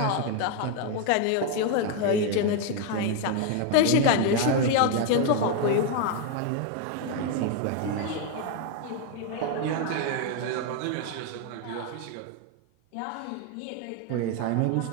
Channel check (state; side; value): different; both; correlation 0.01